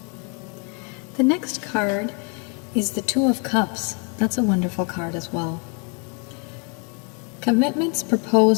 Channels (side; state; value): right; quieter; 35.4 dB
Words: The next card is the 2 of Cups. That's a wonderful card as well. Commitments,